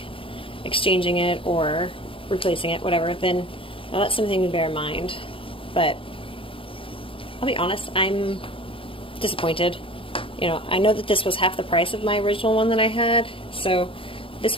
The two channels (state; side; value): late; right; 0.26 ms